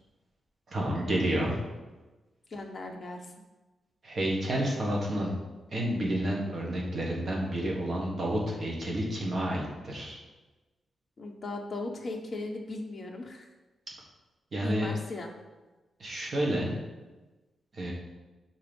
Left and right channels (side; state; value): both; normal; correlation 0.85